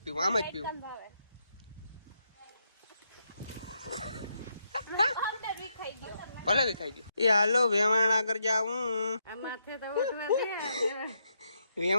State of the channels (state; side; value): inverted; both; correlation -0.79